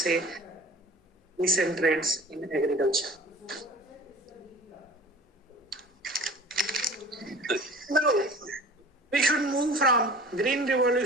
recent trends in agriculture. Now, we should move from green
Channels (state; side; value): normal; both; correlation 0.42